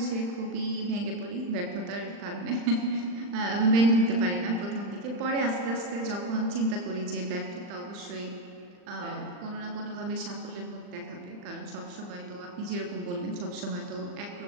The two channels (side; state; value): left; late; 40 ms